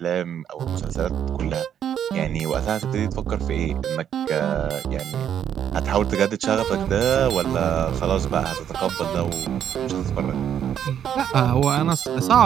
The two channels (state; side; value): quieter; left; 9.3 dB